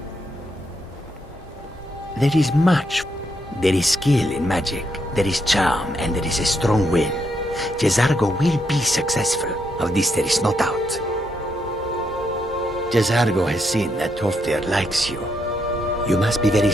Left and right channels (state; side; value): normal; both; correlation 0.78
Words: There is much. There is skill in magic, there is charm, and there is a strong will. Jizargo will be successful. Of this there is no doubt. Jizargo has seen that Tolfdir likes you. You must be very